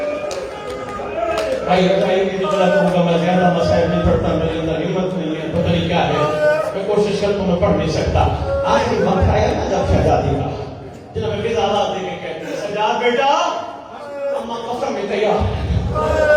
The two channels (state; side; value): identical; both; correlation 1.00